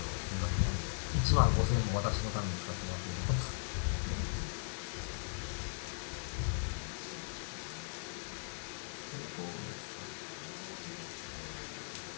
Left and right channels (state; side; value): silent; right; 52 dB below the other